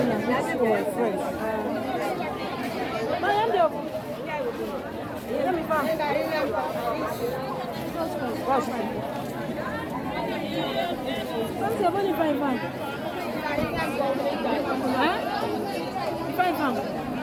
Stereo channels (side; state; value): both; identical; correlation 1.00